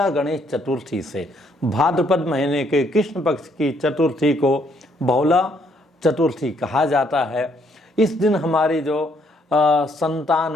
गणेश चतुर्थी से। भाद्रपद महीने के कृष्ण पक्ष की चतुर्थी को बहुला चतुर्थी कहा जाता है। इस दिन हमारी जो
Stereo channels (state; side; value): normal; both; correlation 0.69